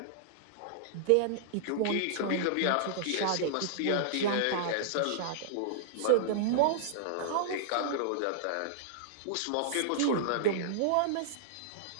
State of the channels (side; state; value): both; different; correlation -0.01